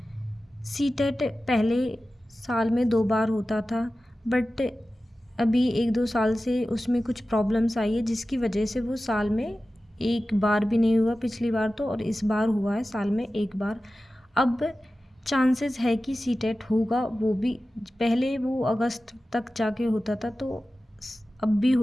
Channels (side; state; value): both; normal; correlation 0.95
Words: सीटेट पहले साल में 2 बार होता था, बट अभी 1-2 साल से उसमें कुछ प्रॉब्लम्स आई है जिसकी वजह से वो साल में एक बार भी नहीं हुआ पिछली बार तो, और इस बार हुआ है साल में एक बार। अब चांसेस है कि सीटेट होगा, वो भी पहले वो अगस्त तक जाके होता था तो अब भी